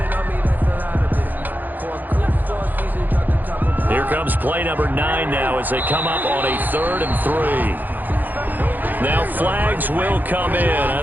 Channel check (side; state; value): left; late; 0.085 ms